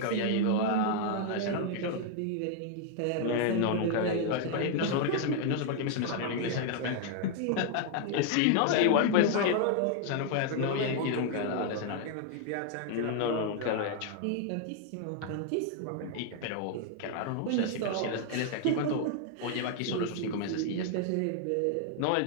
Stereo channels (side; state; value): both; different; correlation 0.00